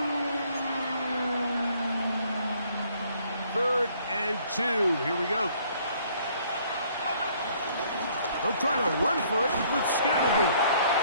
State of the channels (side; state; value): both; inverted; correlation -0.62